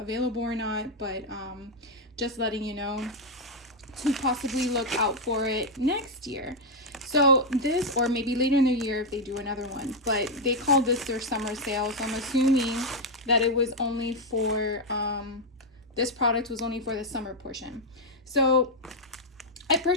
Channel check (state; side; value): normal; both; correlation 0.01